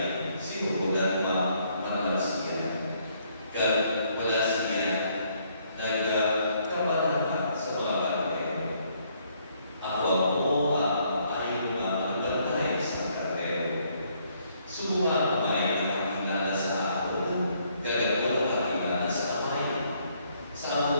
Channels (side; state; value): both; inverted; correlation -0.69